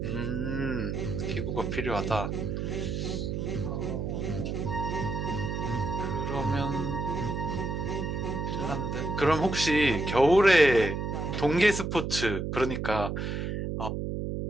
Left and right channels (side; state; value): right; noise; hum, 2 dB below the sound